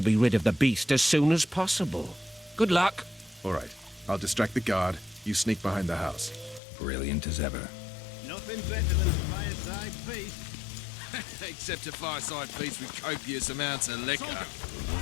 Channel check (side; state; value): right; drops out; at 6.6 s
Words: be rid of the beast as soon as possible. Good luck. All right, I'll distract the guard. You sneak behind the house. Brilliant as ever. Nothing better than a fireside feast. Except a fireside feast with copious amounts of liquor.